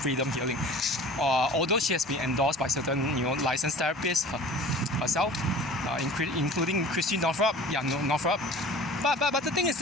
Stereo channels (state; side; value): normal; both; correlation 0.43